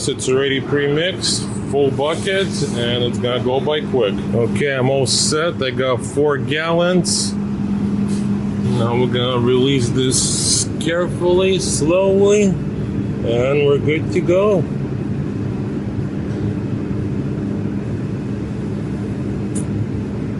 It's already pre-mixed, full bucket, and it's gonna go by quick. Okay, I'm all set. I got 4 gallons. Now we're gonna release this carefully, slowly, and we're good to go.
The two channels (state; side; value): identical; both; correlation 1.00